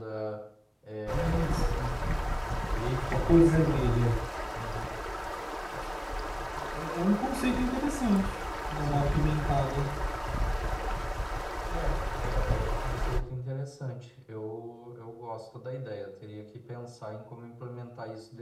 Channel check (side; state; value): both; identical; correlation 1.00